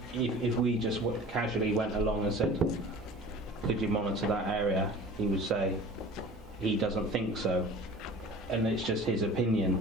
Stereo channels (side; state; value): both; normal; correlation 0.43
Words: we just casually went along and said, could you monitor that area, he would say he doesn't think so, and it's just his